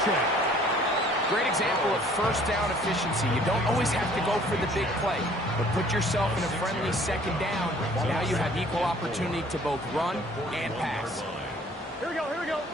Great example of 1st down efficiency. You don't always have to go for the big play, but put yourself in a friendly 2nd down. Now you have equal opportunity to both run and pass. Here we go.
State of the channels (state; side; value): normal; both; correlation 0.56